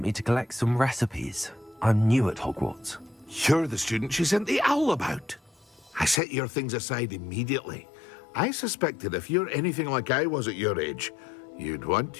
me to collect some recipes. I'm new at Hogwarts. You're the student she sent the owl about. I set your things aside immediately. I suspected if you're anything like I was at your age, you'd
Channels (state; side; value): drops out; right; at 6.2 s